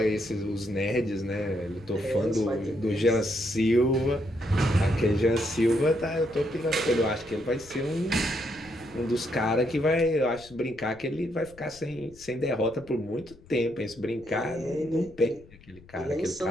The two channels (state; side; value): noise; left; rumble, 23 dB below the sound